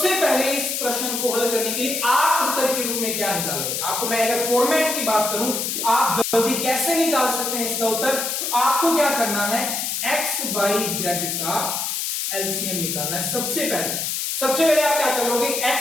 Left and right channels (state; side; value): noise; left; hiss, 2 dB below the sound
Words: पहले इस प्रश्न को हल करने के लिए आप उत्तर के रूप में क्या निकालोगे? आपको मैं अगर फॉर्मेट की बात करूं कि आप जल्दी कैसे निकाल सकते हैं इसका उत्तर, तो आपको क्या करना है, एक्स वाई जेड का एलसीएम निकालना है। सबसे पहले आप क्या करोगे,